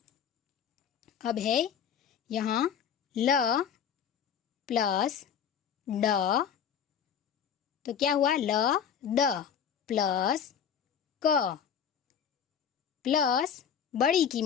अब है यहाँ ल प्लस ड, तो क्या हुआ, ल द प्लस क प्लस बड़ी की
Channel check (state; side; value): quieter; right; 8.0 dB